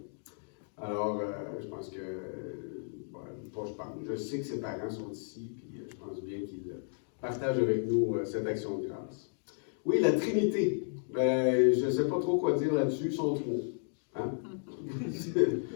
Alors, je pense que... je sais que ses parents sont ici, puis je pense bien qu'il partage avec nous cette action de grâce. Oui, la Trinité. Je ne sais pas trop quoi dire là-dessus, ils sont trois. Hein?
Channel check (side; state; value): right; silent; digital silence